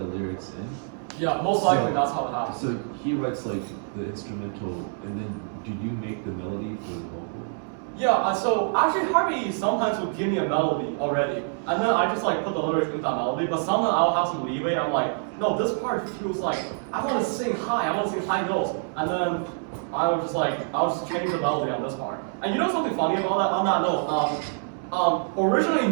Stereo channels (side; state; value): left; silent; 58 dB below the other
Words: lyrics in. Yeah, most likely that's how it happens. So he writes like the instrumental, and then do you make the melody for the vocal? Yeah, so actually Harvey sometimes would give me a melody already, and then I just like put the lyrics into that melody, but sometimes I'll have some leeway. I'm like, no, this part feels like, I want to sing high, I want to sing high notes, and then I'll just change the melody on this part. And you know something funny about that? On that note, originally